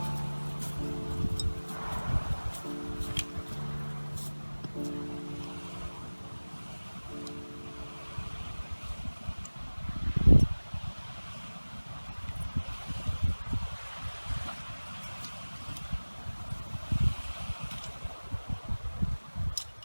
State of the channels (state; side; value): inverted; both; correlation -1.00